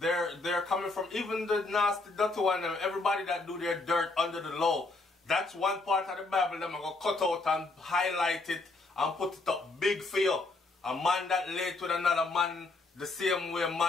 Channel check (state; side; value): quieter; right; 3.4 dB